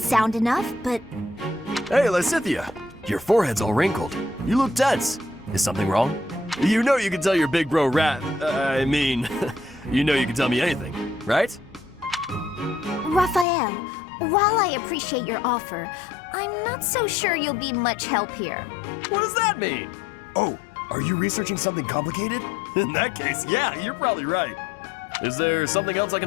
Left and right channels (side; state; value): right; drops out; at 13.5 s